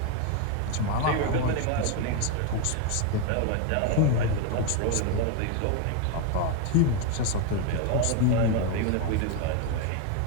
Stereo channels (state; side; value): different; both; correlation 0.01